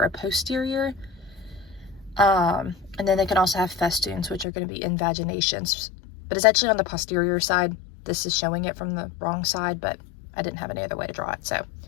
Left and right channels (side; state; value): right; drops out; at 4.5 s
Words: posterior. And then they can also have festoons, which are going to be invaginations. But it's actually on the posterior side. This is showing it from the wrong side, but I didn't have any other way to draw it. So